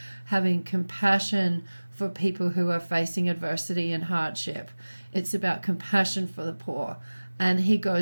having compassion for people who are facing adversity and hardship. It's about compassion for the poor. And he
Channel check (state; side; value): inverted; both; correlation -1.00